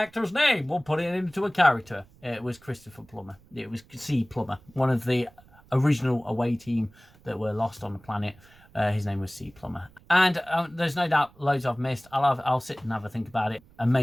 name. We'll put it into a character." It was Christopher Plummer. It was C. Plummer, one of the original away team that were lost on the planet. His name was C. Plummer. And there's no doubt loads I've missed. I'll sit and have a think about it and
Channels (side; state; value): right; noise; rumble, 27 dB below the sound